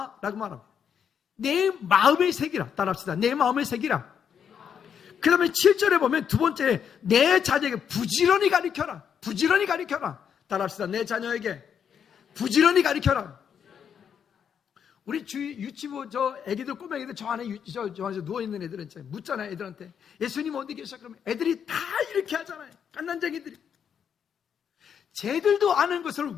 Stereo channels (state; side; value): quieter; right; 7.8 dB